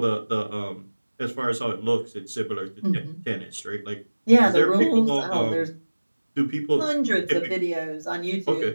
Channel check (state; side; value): inverted; both; correlation -1.00